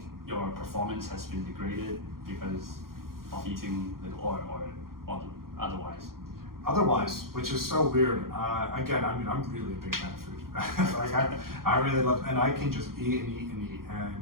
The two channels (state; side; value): late; left; 0.92 ms